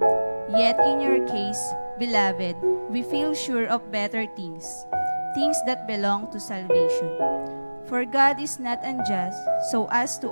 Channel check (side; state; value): both; inverted; correlation -1.00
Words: yet in your case, beloved, we feel sure of better things, things that belong to salvation. For God is not unjust so as to